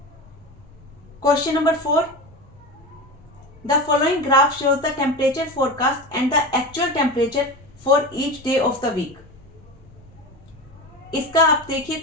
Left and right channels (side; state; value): right; noise; rumble, 27 dB below the sound